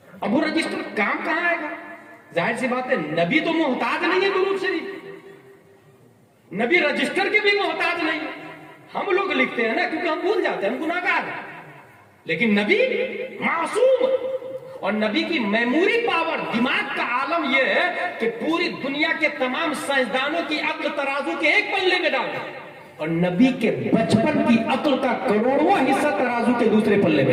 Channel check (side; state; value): both; identical; correlation 1.00